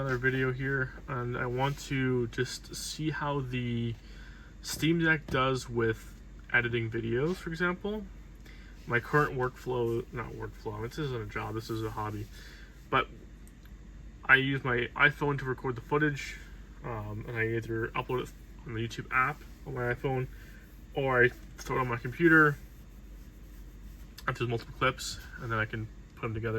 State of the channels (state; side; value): identical; both; correlation 1.00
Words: video here, and I want to just see how the Steam Deck does with editing videos, for example. My current workflow, this isn't a job, this is a hobby, but I use my iPhone to record the footage, and I either upload it on the YouTube app on my iPhone, or I throw it on my computer if there's multiple clips, and then I can put them